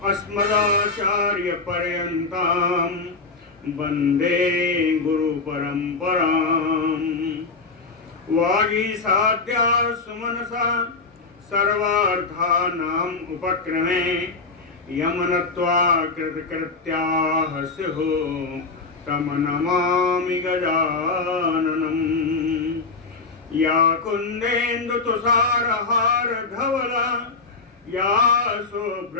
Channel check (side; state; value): right; quieter; 4.0 dB